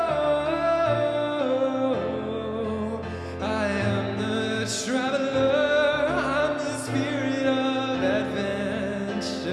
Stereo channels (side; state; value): both; identical; correlation 1.00